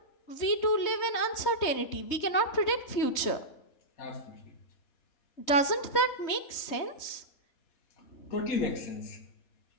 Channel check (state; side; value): late; right; 3.2 ms